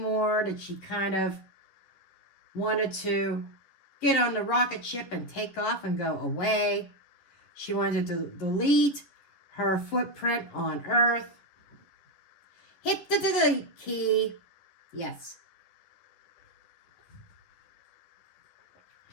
that she kind of wanted to get on the rocket ship and take off and go away. She wanted to delete her footprint on Earth. Hit the delete key. Yes.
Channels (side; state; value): right; late; 10 ms